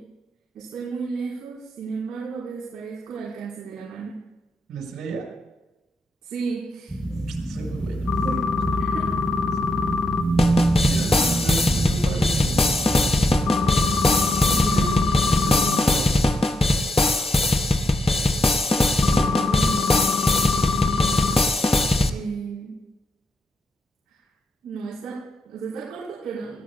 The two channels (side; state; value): both; normal; correlation 0.81